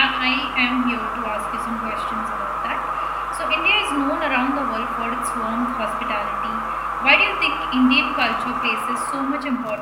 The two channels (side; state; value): both; identical; correlation 1.00